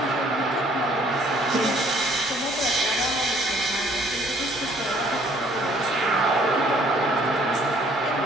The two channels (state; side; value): normal; both; correlation 0.60